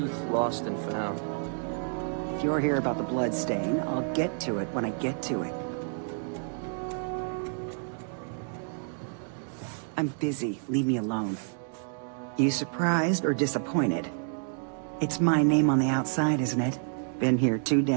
lost and found. If you're here about the blood stain, I'll get to it when I get to it. I'm busy. Leave me alone. You surprised or disappointed? It's my name on the outside, isn't it? Been here too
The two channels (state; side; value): silent; left; 58 dB below the other